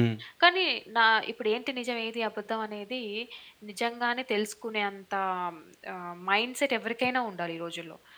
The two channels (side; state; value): both; identical; correlation 1.00